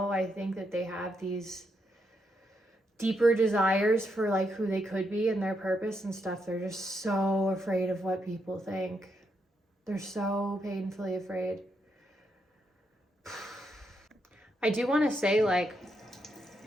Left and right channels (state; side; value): normal; both; correlation 0.80